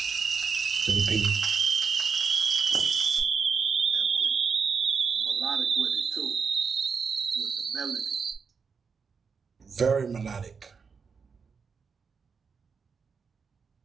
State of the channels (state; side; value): quieter; left; 5.6 dB